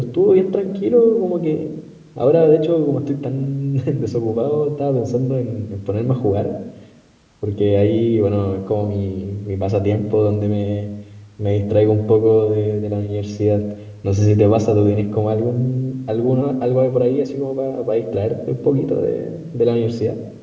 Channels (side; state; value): both; identical; correlation 1.00